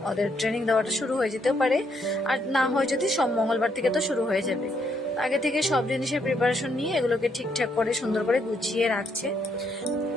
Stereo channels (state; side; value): normal; both; correlation 0.74